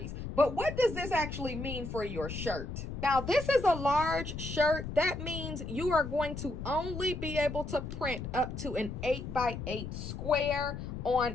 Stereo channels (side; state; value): left; noise; rumble, 7 dB below the sound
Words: But what does this actually mean for your shirt? Now, this is a large shirt. That means you are going to only be able to print up to an 8x8 square